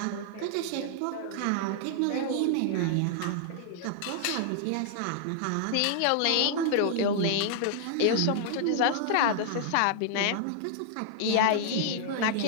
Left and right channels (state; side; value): different; both; correlation -0.01